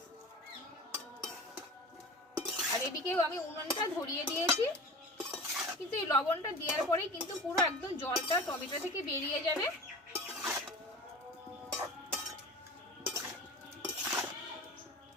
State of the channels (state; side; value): normal; both; correlation 0.35